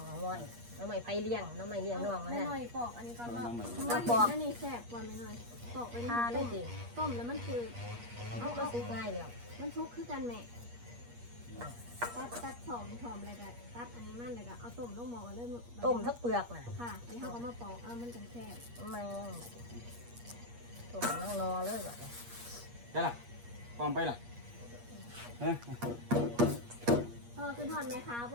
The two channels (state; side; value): late; left; 8.4 ms